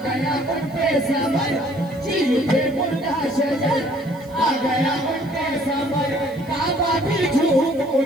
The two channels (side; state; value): right; noise; hiss, 26 dB below the sound